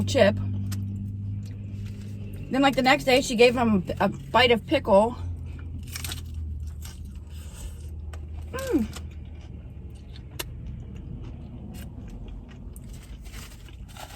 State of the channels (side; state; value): both; identical; correlation 1.00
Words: chip. Then like the next day she gave him a bite of pickle.